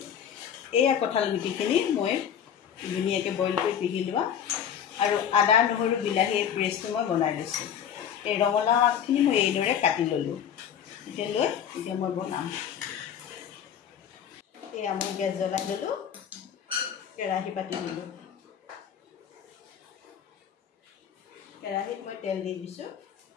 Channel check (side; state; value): right; quieter; 8.8 dB